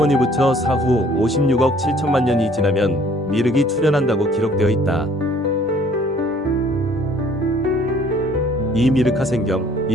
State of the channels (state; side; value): normal; both; correlation 0.58